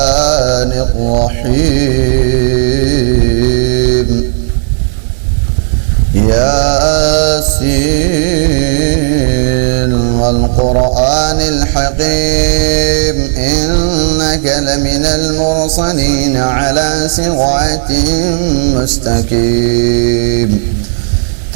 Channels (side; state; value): left; silent; digital silence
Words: الرحيم ياسين والقرآن الحكيم إنك لمن المرسلين على صراط مستقيم